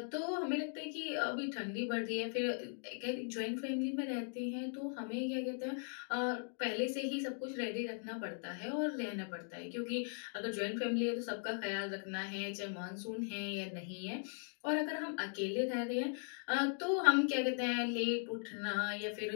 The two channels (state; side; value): silent; right; 52 dB below the other